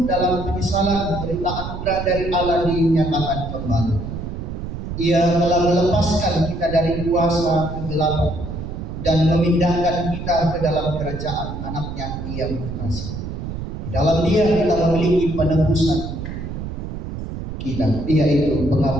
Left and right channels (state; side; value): noise; right; rumble, 7 dB below the sound